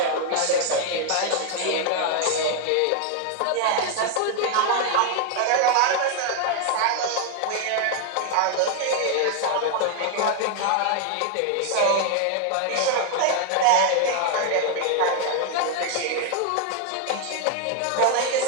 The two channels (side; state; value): both; different; correlation 0.00